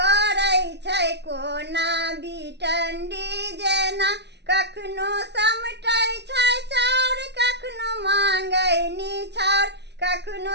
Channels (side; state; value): left; late; 0.50 ms